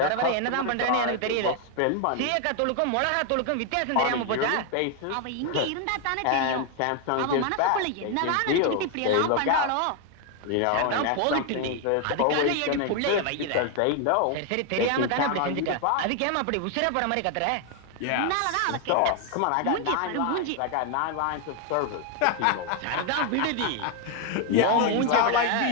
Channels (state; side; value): different; both; correlation 0.01